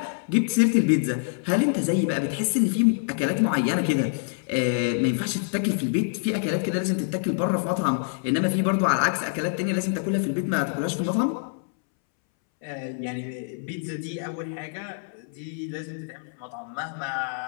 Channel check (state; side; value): silent; right; 61 dB below the other